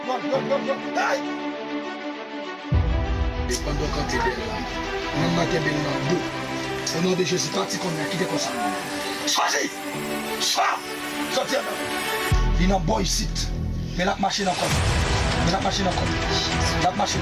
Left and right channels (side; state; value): both; identical; correlation 1.00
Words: Bon. Aïe! Et pendant quand tu es là, on a bien dos. Au nom de Jésus, parti qu'on a quitté comme ça. Choisis! Sortez là. Il y a un boy ici. Mais la machine encore. La machine